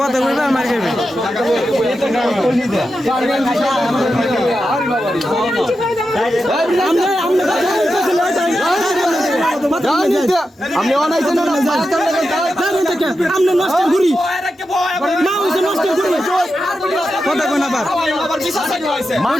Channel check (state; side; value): normal; both; correlation 0.89